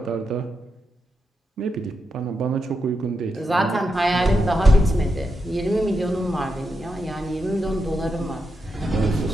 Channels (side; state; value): both; normal; correlation 0.85